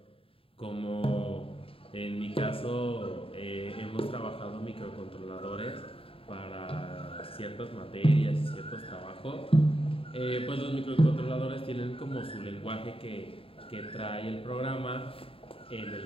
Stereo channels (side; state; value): right; late; 0.27 ms